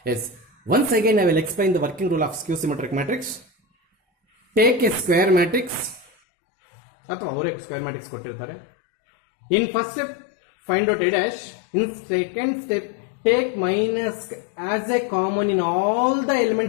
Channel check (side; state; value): right; drops out; at 6.1 s